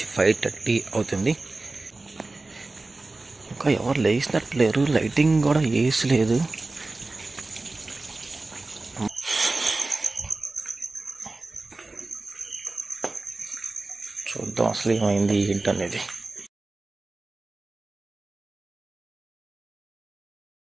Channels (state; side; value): quieter; left; 3.3 dB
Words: 5:30 అవుతుంది. ఇంకా ఎవరు లేచినట్లేరు, లైటింగ్ కూడా వేసి లేదు. చూద్దాం అసలు ఏమైంది ఏంటనేది.